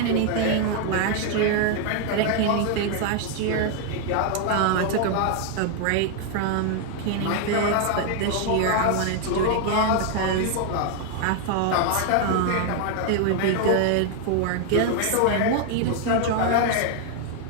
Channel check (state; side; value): different; both; correlation 0.00